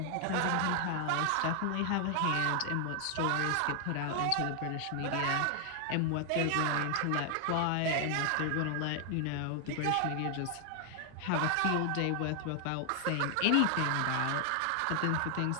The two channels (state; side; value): different; both; correlation 0.00